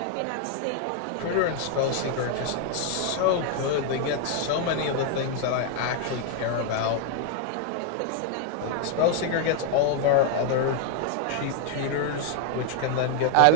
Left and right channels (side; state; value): both; different; correlation 0.00